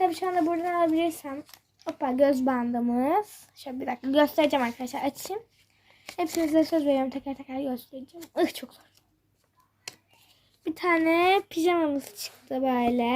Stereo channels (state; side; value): identical; both; correlation 1.00